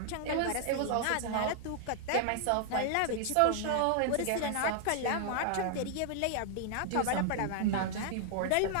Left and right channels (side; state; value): both; different; correlation 0.00